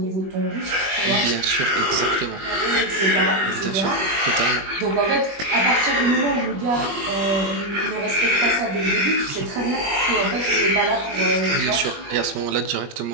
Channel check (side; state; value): left; late; 20 ms